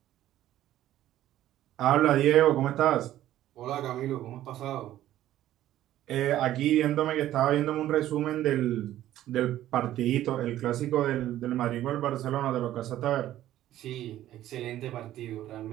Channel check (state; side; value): quieter; left; 13.3 dB